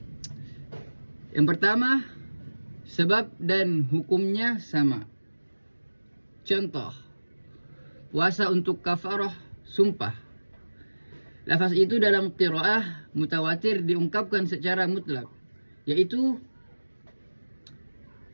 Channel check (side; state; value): both; inverted; correlation -1.00